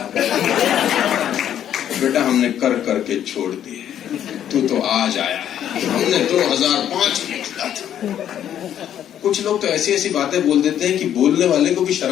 बेटा हमने कर करके छोड़ दिए, तू तो आज आया है, हमने 2005 में किया था। कुछ लोग तो ऐसी ऐसी बातें बोल देते हैं कि बोलने वाले को भी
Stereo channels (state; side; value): quieter; right; 10.3 dB